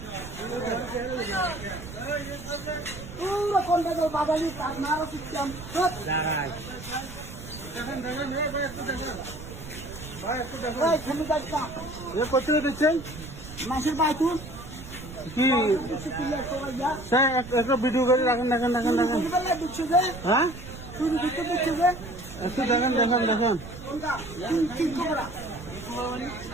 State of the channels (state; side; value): noise; right; rumble, 13 dB below the sound